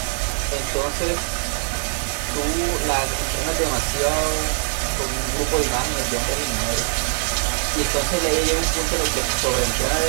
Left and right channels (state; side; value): silent; left; digital silence